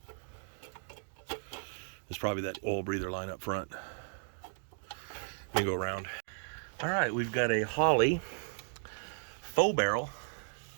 There's probably that oil breather line up front. Let me go around. All right, we've got a Holly faux barrel.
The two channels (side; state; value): left; silent; digital silence